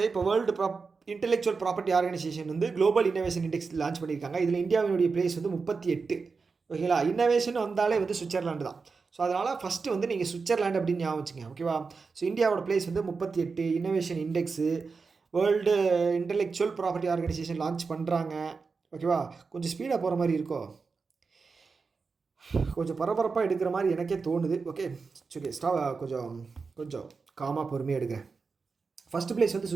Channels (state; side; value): quieter; left; 4.7 dB